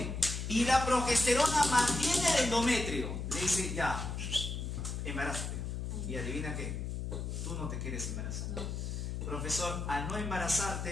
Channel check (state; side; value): noise; left; hum, 4 dB below the sound